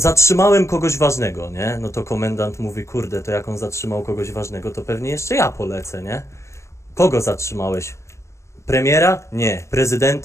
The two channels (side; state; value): right; late; 0.14 ms